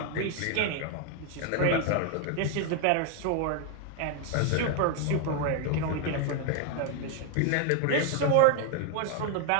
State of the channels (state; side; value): different; both; correlation 0.01